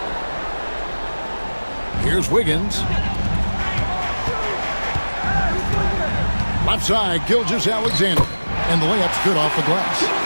Here's Wiggins. Left side, Gilgeous-Alexander. And the layup's good off the glass.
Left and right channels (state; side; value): inverted; both; correlation -1.00